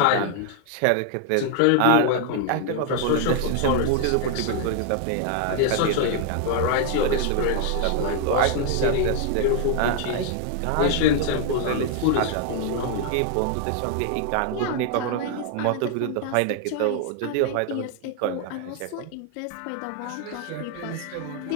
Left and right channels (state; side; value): different; both; correlation 0.00